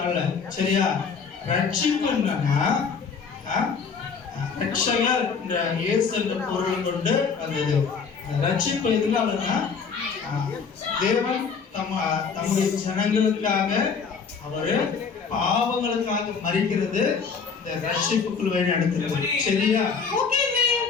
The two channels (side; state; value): right; quieter; 5.6 dB